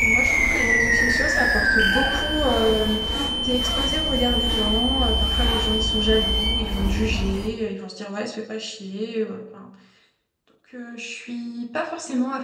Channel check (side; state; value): both; identical; correlation 1.00